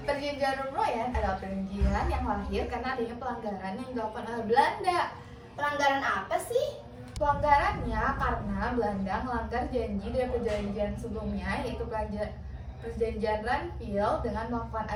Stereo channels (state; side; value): identical; both; correlation 1.00